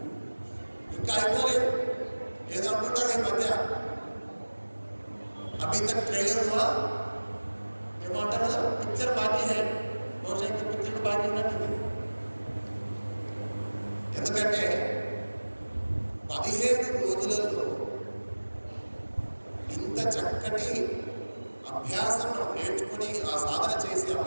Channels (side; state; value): both; inverted; correlation -1.00